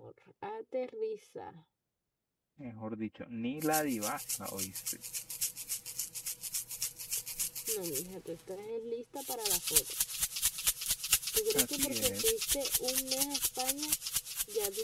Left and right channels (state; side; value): identical; both; correlation 1.00